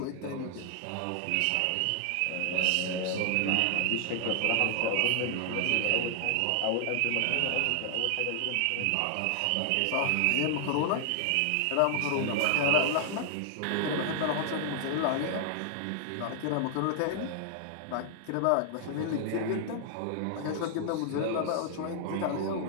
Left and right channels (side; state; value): both; different; correlation 0.00